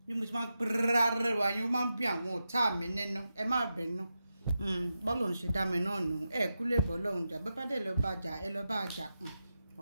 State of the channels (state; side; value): inverted; both; correlation -0.89